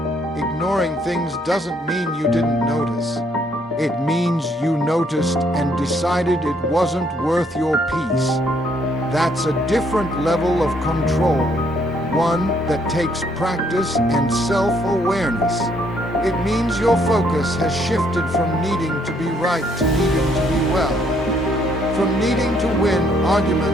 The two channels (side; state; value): both; normal; correlation 0.68